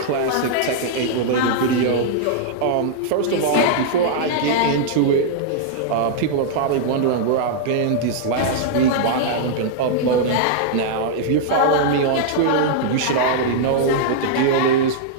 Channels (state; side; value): different; both; correlation -0.02